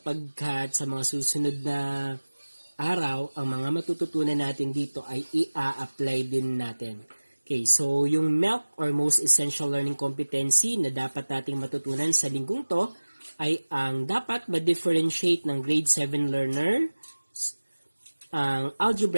sa mga susunod na araw, ang mga matututunan natin dito ay i-apply din natin. Okay, so yung MELC or Most Essential Learning Competency na dapat nating matutunan sa linggong to ay ang dapat ma-differentiate ng grade 7 learner ang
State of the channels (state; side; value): inverted; both; correlation -1.00